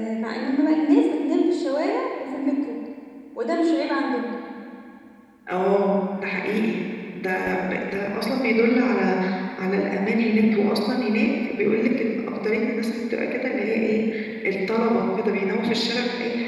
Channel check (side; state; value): both; identical; correlation 1.00